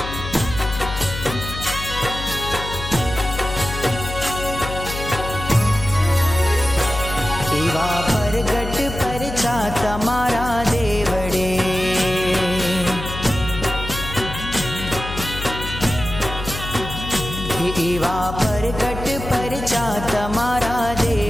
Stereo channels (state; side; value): noise; left; hum, 8 dB below the sound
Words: एवा परगट परचा तमारा देवड़े, एवा परगट परचा तमारा